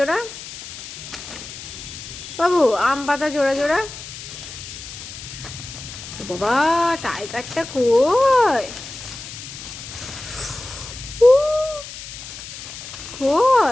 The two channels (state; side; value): noise; left; hiss, 12 dB below the sound